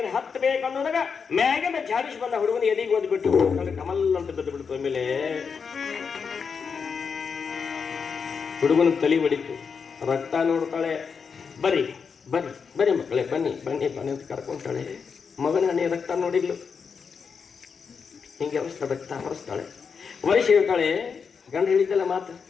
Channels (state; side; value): quieter; right; 5.9 dB